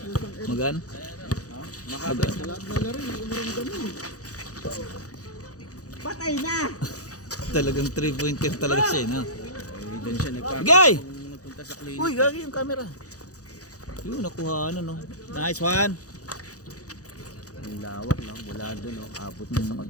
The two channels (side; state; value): right; late; 0.67 ms